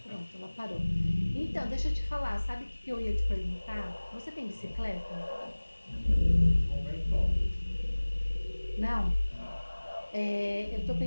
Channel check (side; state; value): both; inverted; correlation -1.00